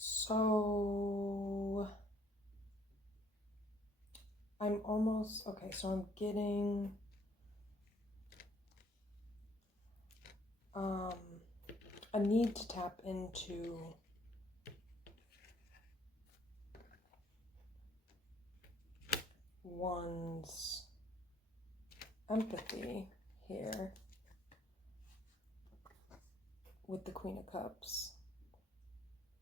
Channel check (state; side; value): normal; both; correlation 0.63